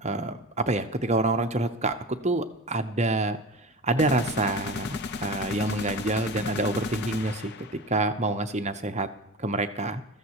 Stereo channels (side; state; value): both; normal; correlation 0.31